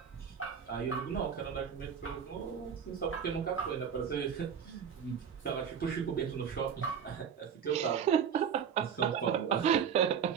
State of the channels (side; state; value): left; quieter; 7.5 dB